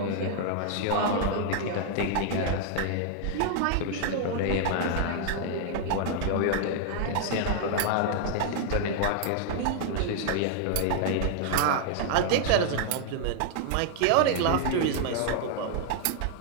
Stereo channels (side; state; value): both; different; correlation 0.00